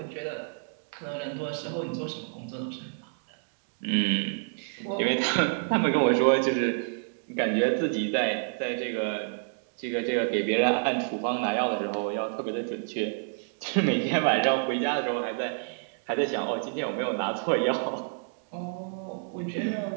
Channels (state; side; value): silent; left; digital silence